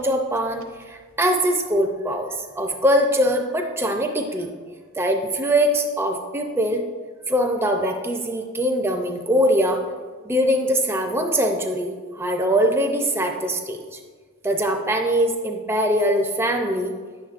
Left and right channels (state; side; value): normal; both; correlation 0.44